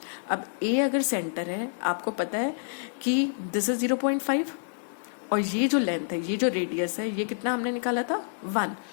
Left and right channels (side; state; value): right; silent; digital silence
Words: अब A अगर सेंटर है, आपको पता है कि दिस इज 0.5, और ये जो लेंथ है, ये जो रेडियस है, ये कितना हमने निकाला था? 1।